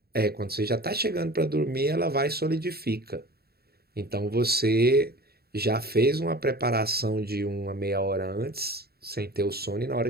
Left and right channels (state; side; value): late; left; 0.46 ms